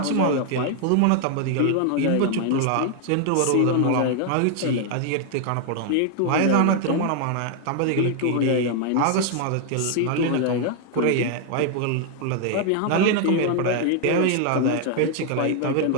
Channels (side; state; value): both; different; correlation 0.00